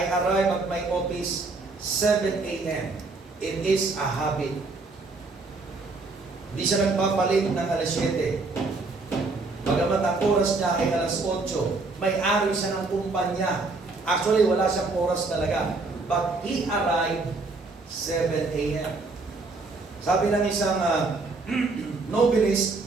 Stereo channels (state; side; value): quieter; left; 3.6 dB